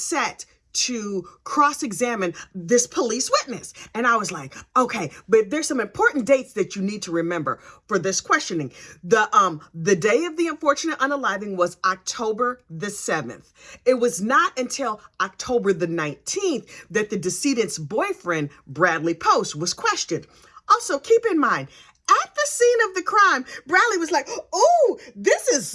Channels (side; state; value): both; identical; correlation 1.00